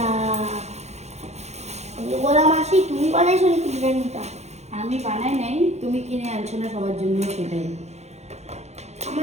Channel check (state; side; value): late; left; 0.32 ms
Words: গোলা মাসি তুমি বানাইছো নাকি বিরিয়ানিটা? আমি বানাই নাই, তুমি কিনে আনছো না সবার জন্য, সেটাই।